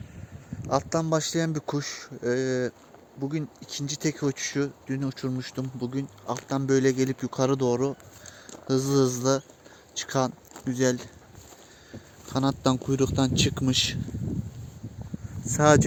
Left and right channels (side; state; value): both; identical; correlation 1.00